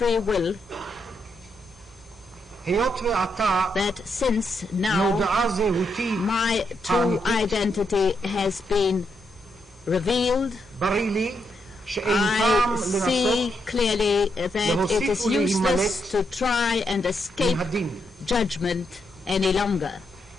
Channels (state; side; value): normal; both; correlation 0.80